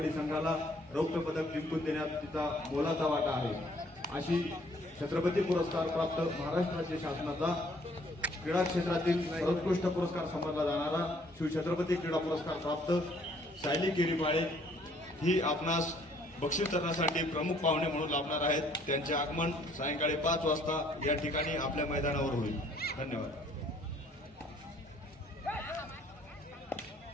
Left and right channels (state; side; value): normal; both; correlation 0.62